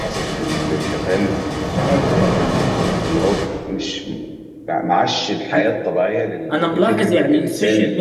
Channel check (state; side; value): identical; both; correlation 1.00